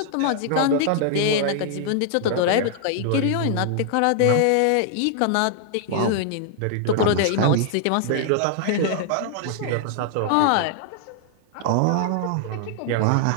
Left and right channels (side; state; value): both; different; correlation 0.00